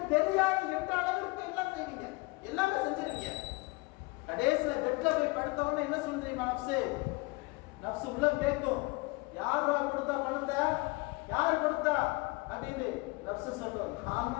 தெரியாது என்ற அளவிற்கு எல்லாம் செய்வீங்க, எல்லாமே செஞ்சிருக்கீங்க. கடைசியில பெட்ல போய் படுத்தவொடனே என்ன சொல்றீங்க? நஃப்ஸ் உள்ள கேட்கும், யாரா கொடுத்தா பணத்தை, யார் கொடுத்தா அப்படின்னு. நஃப்ஸ் சொல்லும், நான்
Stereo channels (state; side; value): quieter; right; 25.2 dB